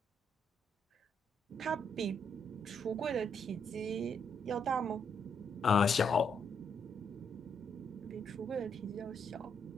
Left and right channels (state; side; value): normal; both; correlation 0.75